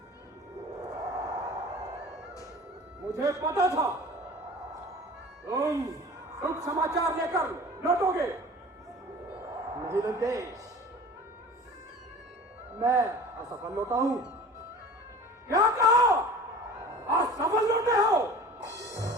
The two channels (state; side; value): normal; both; correlation 0.41